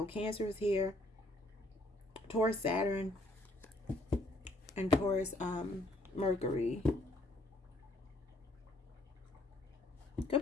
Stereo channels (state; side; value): normal; both; correlation 0.63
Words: Cancer is here. Taurus, Saturn, and Taurus, Mercury. Could